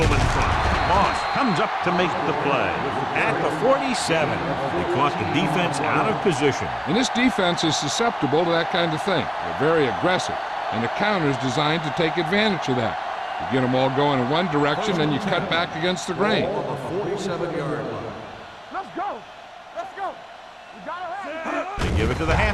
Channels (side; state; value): both; identical; correlation 1.00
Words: in front. Moss comes up to make the play. At the 47, they caught the defense out of position. And this defense is susceptible to that kind of thing. They're very aggressive, and the counter is designed to take advantage of that. You get them all going in one direction, then you cut back against the grain. Ball on the 47-yard line. Let's go. Let's go. We gotta have it. They give it to the